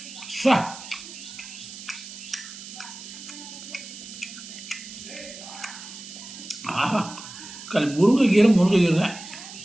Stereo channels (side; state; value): right; noise; hiss, 13 dB below the sound